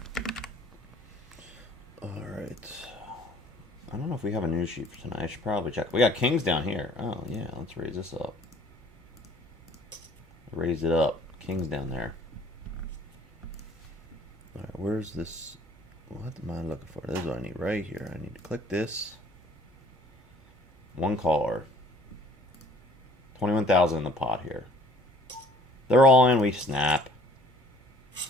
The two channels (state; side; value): normal; both; correlation 0.55